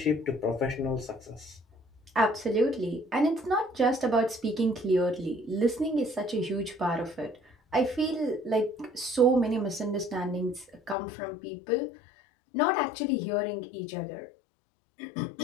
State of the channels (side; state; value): right; drops out; at 11.0 s